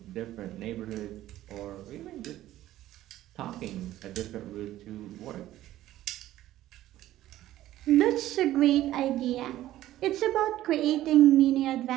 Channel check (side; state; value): left; quieter; 14.2 dB